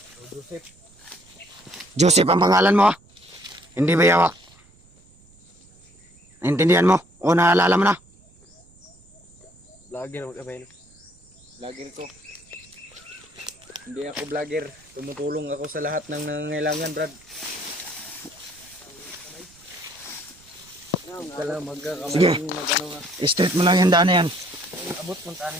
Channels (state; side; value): noise; right; rumble, 28 dB below the sound